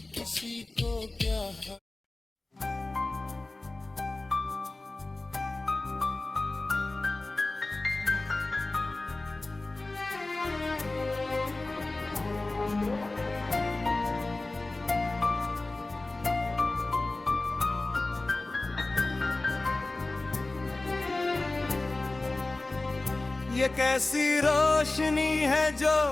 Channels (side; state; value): right; quieter; 3.0 dB